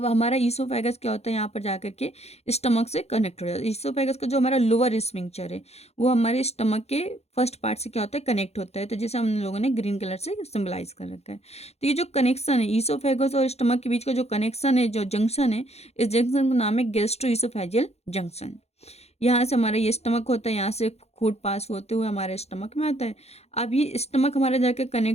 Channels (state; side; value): late; right; 0.31 ms